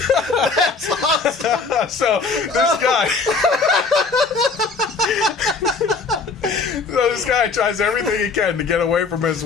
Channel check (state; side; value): quieter; right; 4.4 dB